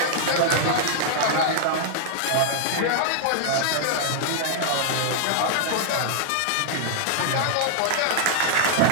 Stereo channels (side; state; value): both; different; correlation -0.01